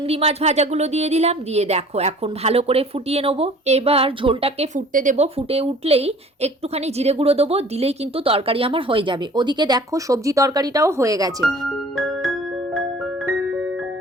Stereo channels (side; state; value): both; normal; correlation 0.49